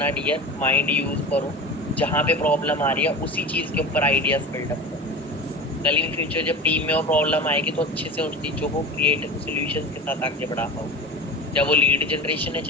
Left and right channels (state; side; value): normal; both; correlation 0.31